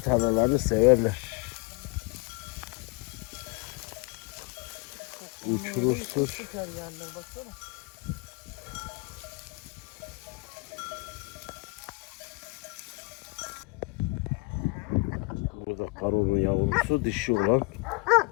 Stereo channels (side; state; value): right; quieter; 28.1 dB